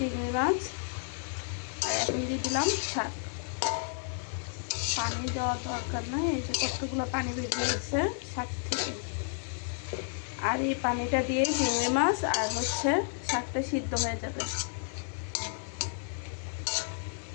মাছ, আর এখন দিয়ে দিলাম শাক। পানি দেওয়ার দরকার নাই, এই যে কতগুলো পানি বেরিয়ে গেছে শাক থেকে। আর এই পানিটা দিয়ে চিংড়ি মাছ আর হচ্ছে শাকটা সিদ্ধ হয়ে যাবে।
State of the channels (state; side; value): silent; right; 57 dB below the other